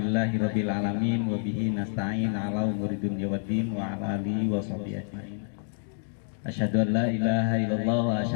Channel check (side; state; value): right; silent; digital silence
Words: alamin wa bihi nasta'in ala umuri dunya waddin wa ala alihi wa sahbihi ajmain. Asyhadu an la ilaha illallah wa